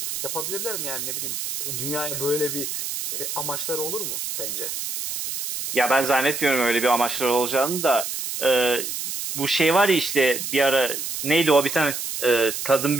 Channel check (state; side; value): noise; right; hiss, 5 dB below the sound